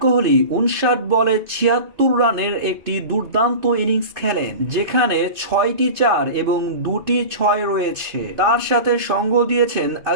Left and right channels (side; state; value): left; late; 2.6 ms